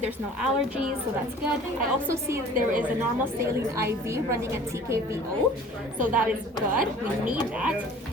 There's no allergies, so that's good. I also see there is a normal saline IV running at TKVO, so that is good. We need that.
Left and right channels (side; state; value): both; normal; correlation 0.47